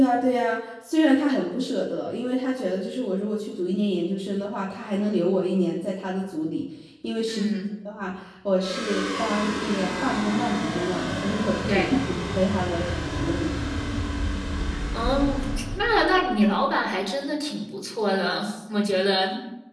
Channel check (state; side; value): identical; both; correlation 1.00